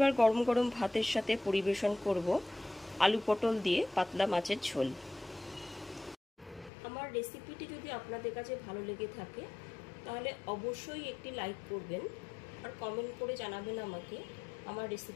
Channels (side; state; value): right; drops out; at 6.7 s